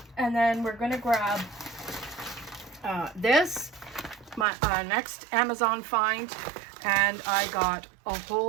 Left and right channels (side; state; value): left; drops out; at 4.5 s